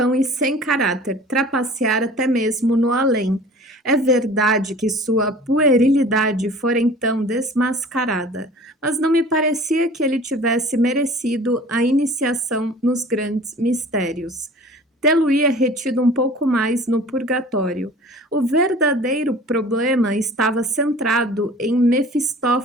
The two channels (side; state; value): both; normal; correlation 0.45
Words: e sem caráter, trapacear até mesmo no além. É verdade que sua puerilidade fora então desmascarada, mas não me parecia que ele tivesse merecido a iniciação nos grandes mistérios. Tê-lo-ia retido um pouco mais no purgatório. O verdadeiro problema estava centrado em